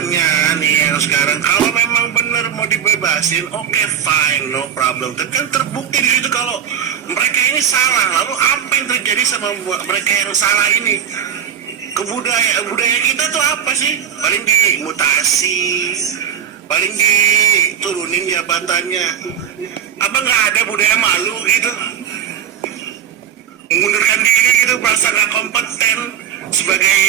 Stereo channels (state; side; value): quieter; left; 9.0 dB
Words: nih yang sekarang, kalau memang benar mau dibebasin, oke, fine, no problem. Tapi kan terbukti di situ kalau mereka ini salah. Lalu apa yang terjadi sama mereka yang salah ini? Budaya kita tuh apa sih? Paling dimutasi, paling diturunin jabatannya. Apa nggak ada budaya malu gitu? Mengundurkan diri gitu, merasa nggak kompeten